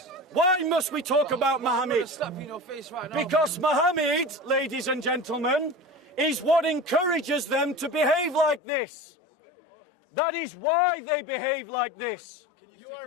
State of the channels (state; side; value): drops out; right; at 8.6 s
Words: Why must we talk about Muhammad? Slap you in your face right now. Because Muhammad, ladies and gentlemen, is what encourages them to behave like this. That is why they behave like this.